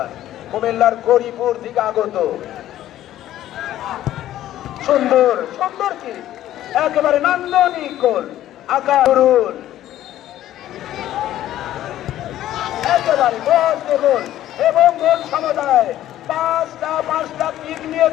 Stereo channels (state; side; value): quieter; right; 13.0 dB